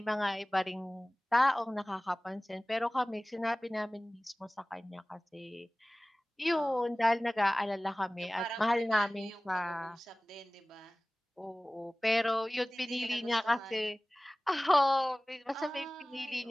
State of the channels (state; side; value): normal; both; correlation 0.98